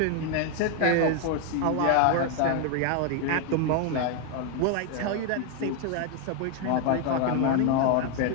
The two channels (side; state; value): both; different; correlation 0.01